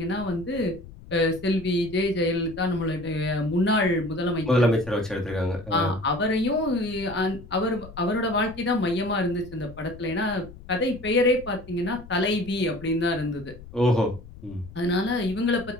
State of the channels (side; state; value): left; noise; rumble, 17 dB below the sound